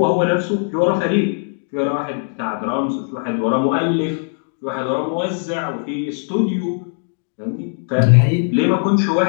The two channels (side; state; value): right; silent; 62 dB below the other